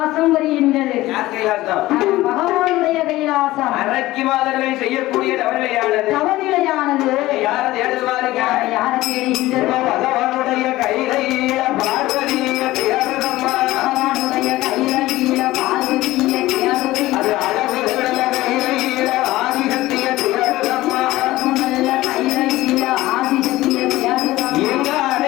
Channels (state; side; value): quieter; right; 17.3 dB